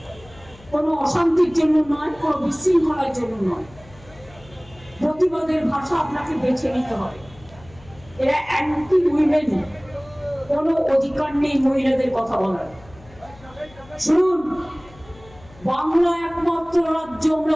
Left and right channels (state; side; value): noise; left; hum, 23 dB below the sound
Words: কোনো অশান্তির জন্য নয়, কোনো বিশৃঙ্খলার জন্য নয়। প্রতিবাদের ভাষা আপনাকে বেছে নিতে হবে। এরা অ্যান্টি উইমেন, কোনো অধিকার নেই মহিলাদের কথা বলার। শুনুন, বাংলা একমাত্র রাজ্য